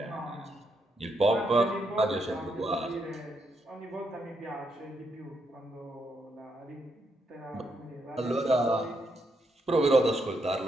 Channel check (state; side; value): normal; both; correlation 0.79